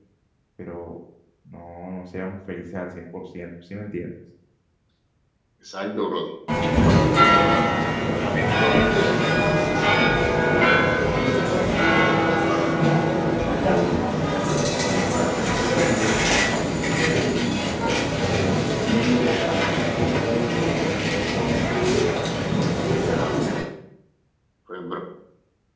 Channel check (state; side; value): identical; both; correlation 1.00